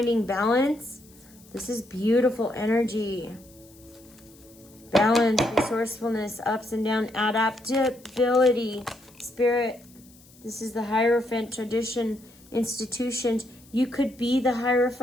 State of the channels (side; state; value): left; noise; hiss, 26 dB below the sound